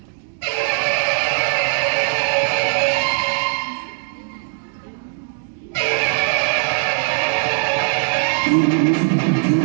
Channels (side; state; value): left; silent; digital silence